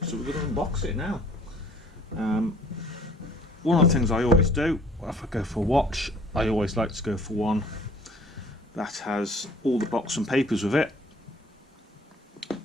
so we're going to unbox it now. One of the things I always do, if I go for a watch, I always like to go for one that has all the box and papers with it.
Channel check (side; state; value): both; normal; correlation 0.55